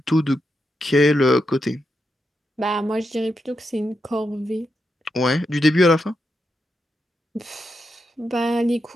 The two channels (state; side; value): normal; both; correlation 0.85